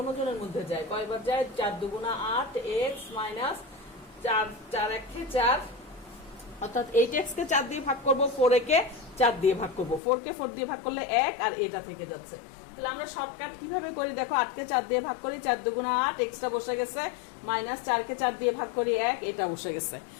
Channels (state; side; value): drops out; right; at 10.0 s